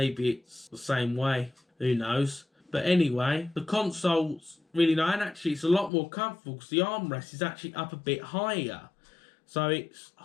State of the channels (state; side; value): drops out; right; at 5.9 s